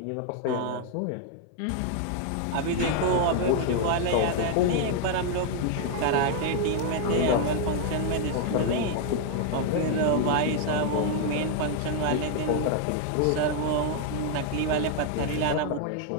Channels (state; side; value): different; both; correlation 0.00